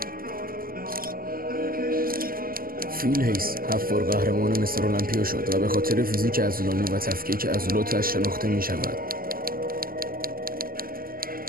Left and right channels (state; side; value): late; left; 0.42 ms